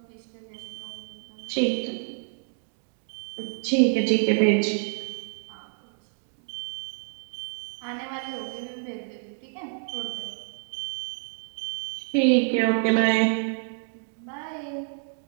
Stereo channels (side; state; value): left; silent; 59 dB below the other